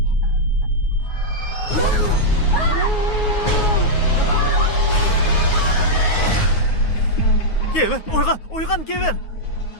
Kevin, oygan Kevin.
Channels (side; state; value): right; late; 9.5 ms